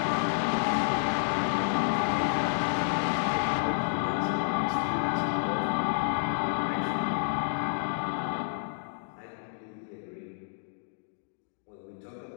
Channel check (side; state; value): right; silent; digital silence